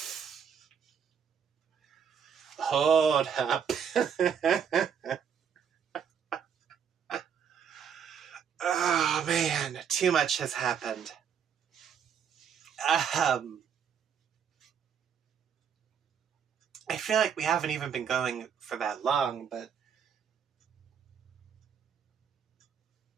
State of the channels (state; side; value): quieter; left; 7.6 dB